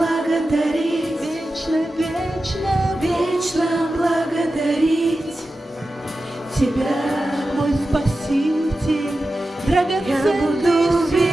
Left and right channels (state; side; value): normal; both; correlation 0.93